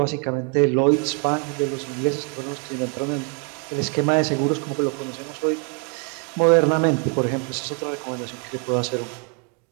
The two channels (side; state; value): left; quieter; 37.9 dB